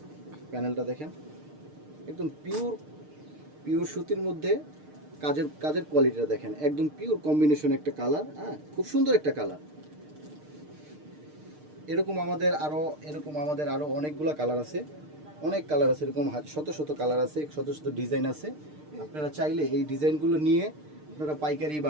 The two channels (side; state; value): left; late; 6.6 ms